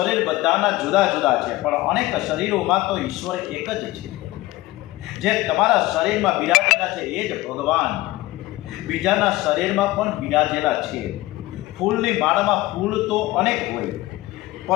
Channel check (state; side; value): quieter; right; 18.3 dB